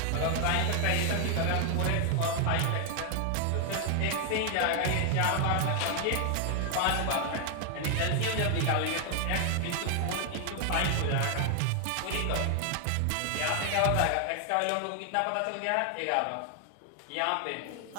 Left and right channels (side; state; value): both; different; correlation 0.00